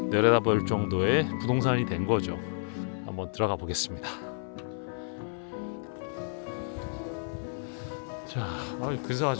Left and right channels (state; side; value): silent; right; 55 dB below the other